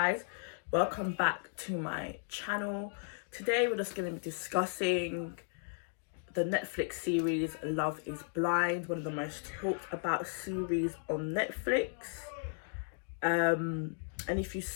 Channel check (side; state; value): right; silent; 54 dB below the other